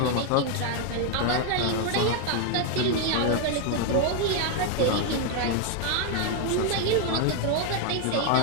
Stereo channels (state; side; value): different; both; correlation 0.00